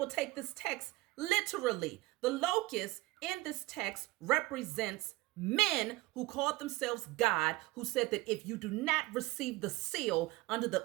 take this text literally. The locust in this text represents men who called themselves God, who said that if you do not receive the seal under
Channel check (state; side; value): quieter; left; 20.1 dB